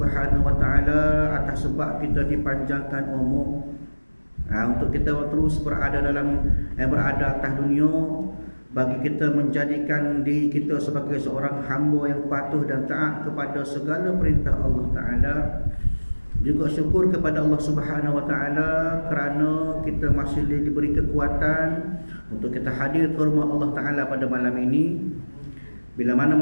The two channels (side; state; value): both; inverted; correlation -1.00